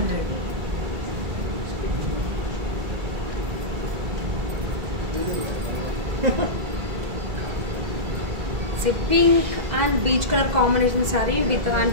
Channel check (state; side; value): late; left; 2.0 ms